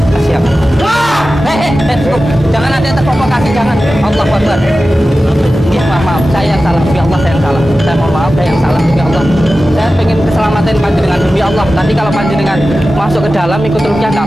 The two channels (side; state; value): both; normal; correlation 0.94